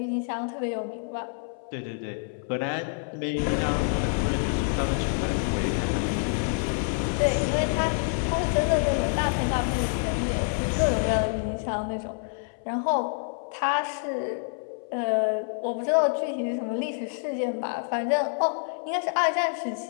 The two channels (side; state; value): right; silent; 60 dB below the other